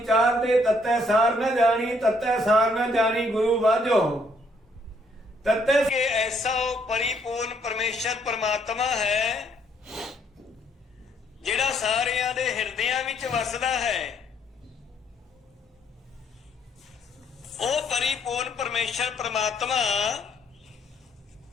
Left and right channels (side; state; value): both; normal; correlation 0.68